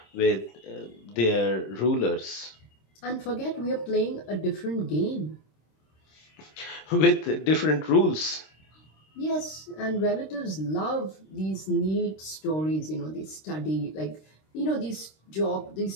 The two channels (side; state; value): right; late; 26 ms